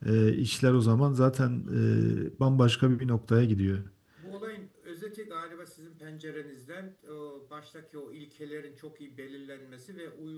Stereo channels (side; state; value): both; identical; correlation 1.00